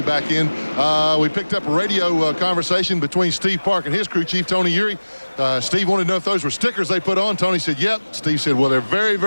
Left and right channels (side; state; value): both; inverted; correlation -1.00